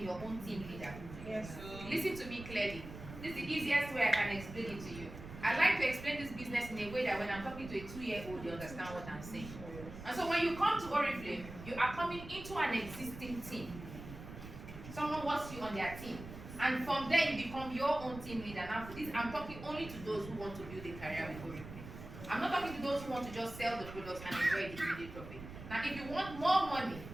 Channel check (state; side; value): noise; right; rumble, 12 dB below the sound